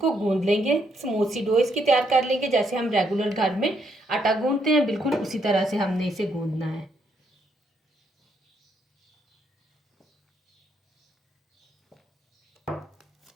गूंद लेंगे। स्मूथ सी डो इसकी तैयार कर लेंगे। जैसे हम रेगुलर घर में आटा गूंदते हैं, बिल्कुल उसी तरह से हमने इसे गूंदना है।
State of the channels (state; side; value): normal; both; correlation 0.74